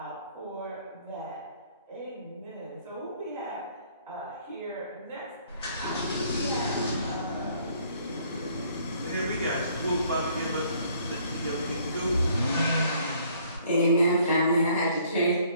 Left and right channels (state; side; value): inverted; both; correlation -0.62